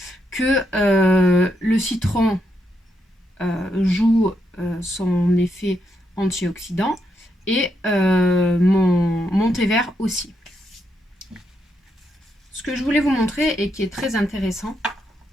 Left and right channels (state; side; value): normal; both; correlation 0.80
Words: que le citron joue son effet antioxydant et mon thé vert aussi. Ce que je voulais vous montrer et qui est très intéressant,